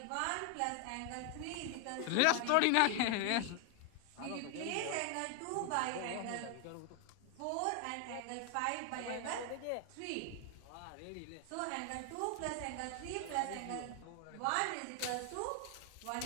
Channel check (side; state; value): both; different; correlation 0.01